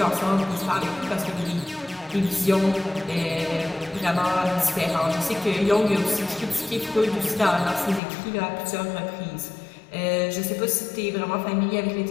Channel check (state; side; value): drops out; right; at 8.0 s